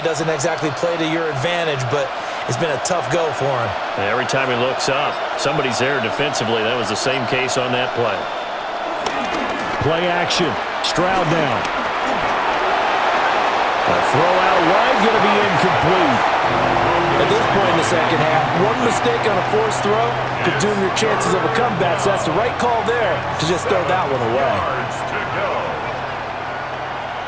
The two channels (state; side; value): identical; both; correlation 1.00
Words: doesn't exactly play to your advantage, but it's been a tough go for him. Every time he looks up, somebody's there defensively. That was the same case on that play. Play action. Stroud now. A throw out wide, going to be incomplete. At this point in the second half, one mistake on a forced throw could doom your chances of a comeback, so that's the right call there to just throw that one away.